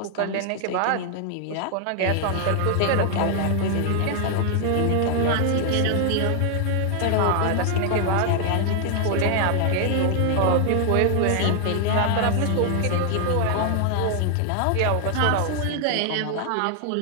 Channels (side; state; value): both; different; correlation 0.00